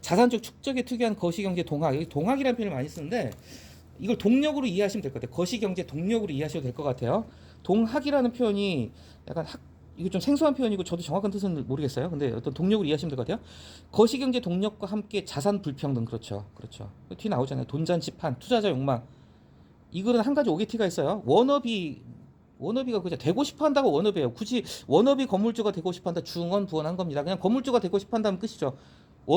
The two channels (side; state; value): both; identical; correlation 1.00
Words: 축적에 특유한 거시경제 동학. 여기 동학이라는 표현을 많이 쓰는데 이걸 동력으로 이해하시면 될 것 같아요. 거시경제 동력으로 이해하셔도 될 것 같아요. 동학이라는 표현이 약간 이거 좀 생소한 표현이고 저도 정확한 뜻은 모르겠어요. 근데 어떤 동력으로 이해하시면 될 것 같아요. 거시경제 동력과 함께 자산 불평등. 그렇죠. 뒤 나오잖아요. 돈잔치판, 투자자 욕망. 이 글은 한 가지 오게티가 있어요. 워너비가 그냥 되고 싶어 한다고 워너비예요. 굳이 워너비 건물주가 되고 싶어 한다. 중원 부원한 겁니다. 그냥 건물주가 되고 싶어 한다면 끝이죠.